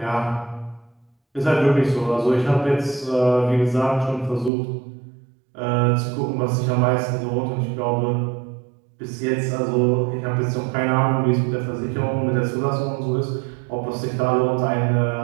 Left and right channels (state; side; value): drops out; left; at 4.5 s